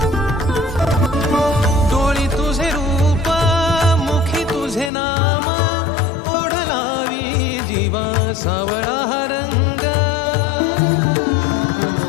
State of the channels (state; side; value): drops out; right; at 4.9 s